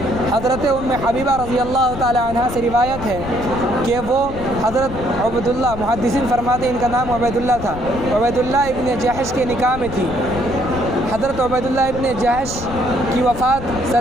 حضرت ام حبیبہ رضی اللہ تعالی عنہ سے روایت ہے کہ وہ حضرت عبیداللہ، محدثین فرماتے ہیں ان کا نام عبیداللہ تھا، عبیداللہ ابن جحش کے نکاح میں تھی. حضرت عبیداللہ ابن جحش کی وفات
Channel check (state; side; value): noise; left; rumble, 10 dB below the sound